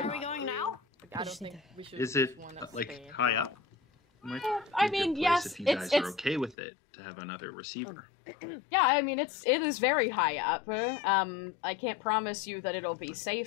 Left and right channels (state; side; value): drops out; right; at 6.6 s